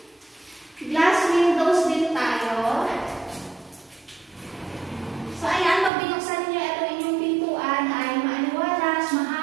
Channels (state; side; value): drops out; left; at 5.9 s